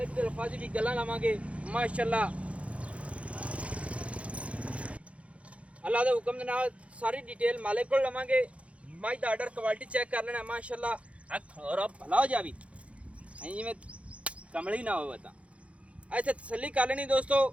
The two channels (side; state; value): left; late; 0.063 ms